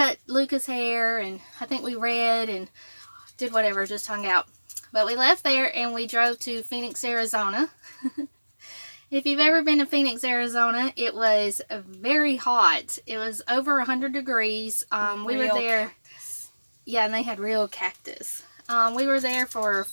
Luca's hair, and I think we read and did whatever, just hung out. But we left there and we drove to Phoenix, Arizona. If you've ever been to Phoenix, Arizona, it was very hot. It was over 100 degrees. We were there. Cactus. Yeah, and they had real cactus. We were there for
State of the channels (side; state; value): both; inverted; correlation -1.00